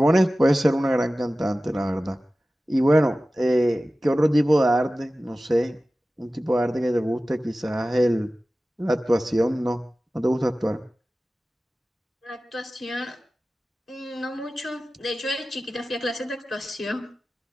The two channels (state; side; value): normal; both; correlation 0.96